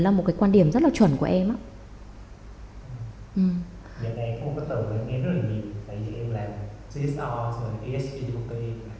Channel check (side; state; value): both; identical; correlation 1.00